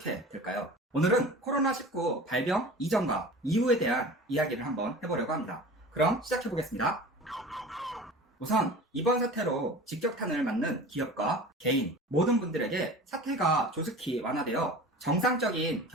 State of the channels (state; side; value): normal; both; correlation 0.38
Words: 될까요? 오늘은 코로나19 발병 이전과 이후에 대한 이야기를 한번 해보려고 합니다. 그럼 시작해보겠습니다. 우선 이번 사태로 직격탄을 맞는 기업과 개인, 모든 분들에게 사태가 조속히 완화되어 정상적인